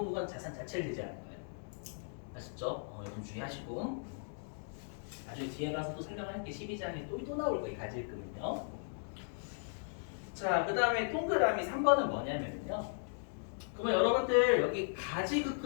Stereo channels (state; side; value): silent; right; digital silence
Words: 자산 자체를 제재하는 거예요. 아시죠? 이건 주의하시고 나중에 뒤에 가서 또 설명할게. 12장에 또 나올 거예요. 가지급금은요. 자, 그 다음에 동그라미 3번은 뭐냐면요. 그러면 여러분들 여기